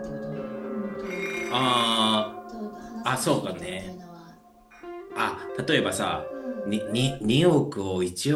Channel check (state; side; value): identical; both; correlation 1.00